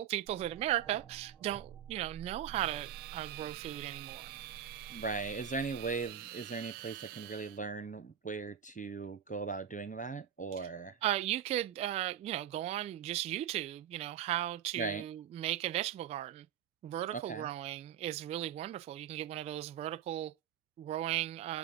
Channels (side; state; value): left; quieter; 9.5 dB